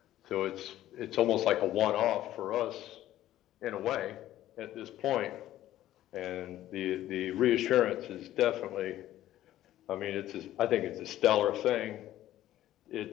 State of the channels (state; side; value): quieter; right; 13.6 dB